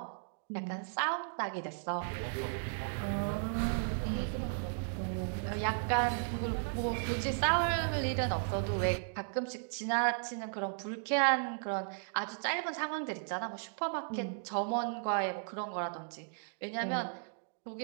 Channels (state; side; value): silent; left; digital silence